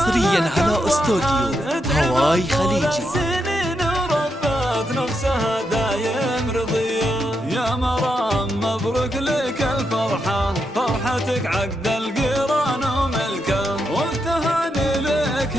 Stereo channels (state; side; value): normal; both; correlation 0.83